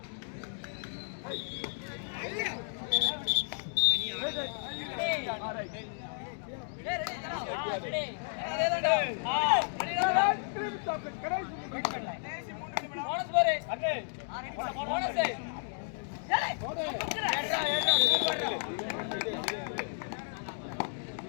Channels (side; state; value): right; silent; digital silence